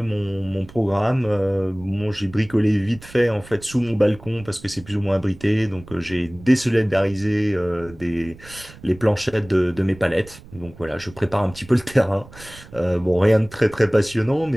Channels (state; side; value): noise; right; rumble, 20 dB below the sound